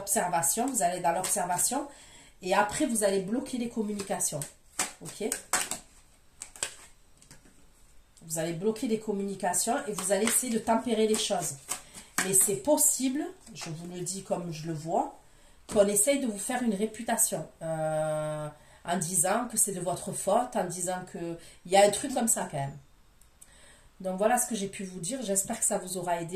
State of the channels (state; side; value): identical; both; correlation 1.00